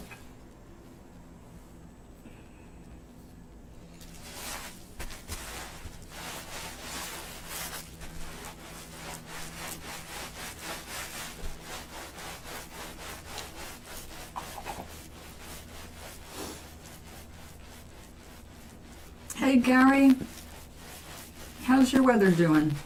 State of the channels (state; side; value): identical; both; correlation 1.00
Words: Hey Gary, how's your weather doing?